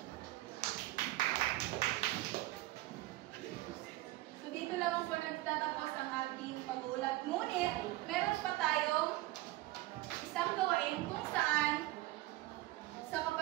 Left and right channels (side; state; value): left; quieter; 17.7 dB